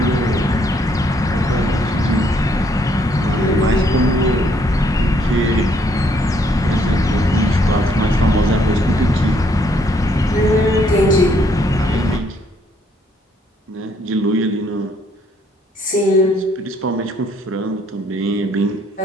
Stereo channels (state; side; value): normal; both; correlation 0.68